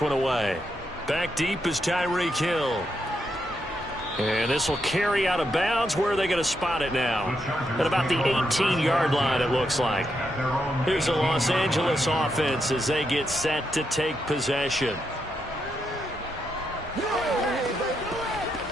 one away. Back deep is Tyreek Hill. And this will carry out of bounds. Where are they going to spot it now? At about the 18-yard line, it looks like. Here's the Los Angeles offense as they get set to take possession.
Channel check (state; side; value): normal; both; correlation 0.81